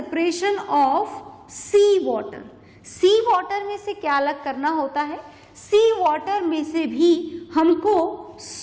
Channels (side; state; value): both; identical; correlation 1.00